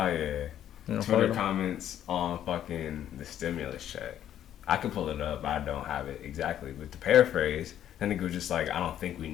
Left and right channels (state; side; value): quieter; right; 10.8 dB